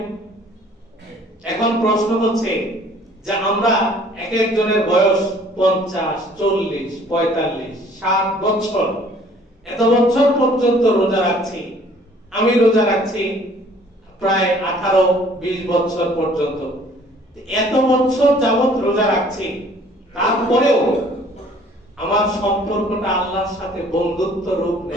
এখন প্রশ্ন হচ্ছে যে আমরা এক একজনের বয়স 50, 40, 45, 60 বছর, এত বছর পর্যন্ত রোজা রাখছি। আমি রোজা রাখছি প্রায় 18-20 বছর পর্যন্ত। এত বছর যাবত রোজা রাখছি, তারপরেও আমার সম্পর্কটা আল্লাহর সাথে বন্ধুত্ব রূপ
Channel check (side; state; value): both; normal; correlation 0.55